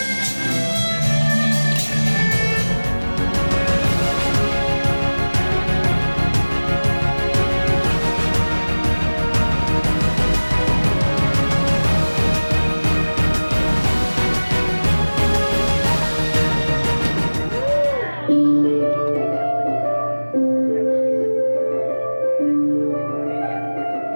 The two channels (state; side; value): inverted; both; correlation -1.00